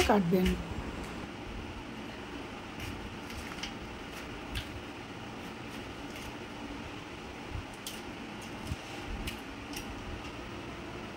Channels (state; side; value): identical; both; correlation 1.00